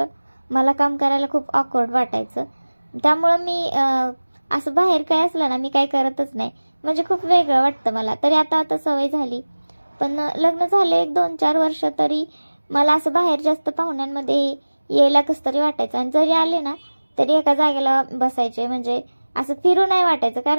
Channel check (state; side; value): inverted; both; correlation -1.00